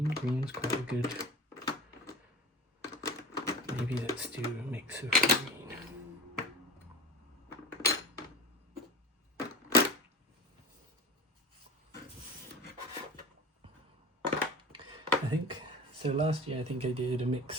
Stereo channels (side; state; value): both; normal; correlation 0.34